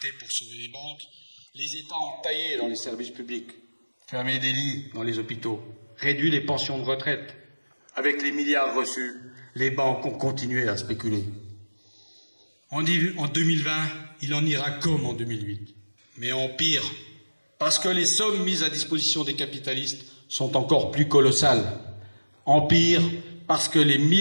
pour sauver les banques, les États ont taillé dans les services publics, fermé des lits dans les hôpitaux, réduit les pensions de retraite. Avec les milliards reçus, les banques ont continué à spéculer. En 2020, il en ira comme en 2008, mais en pire, parce que les sommes mises à disposition des capitalistes sont encore plus colossales. En pire, parce que les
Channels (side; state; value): both; inverted; correlation -1.00